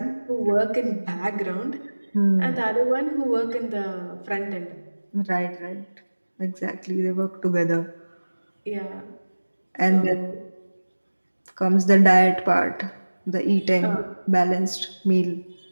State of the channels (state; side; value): inverted; both; correlation -1.00